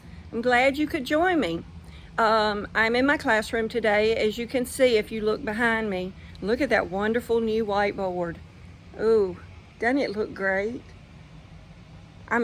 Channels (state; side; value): identical; both; correlation 1.00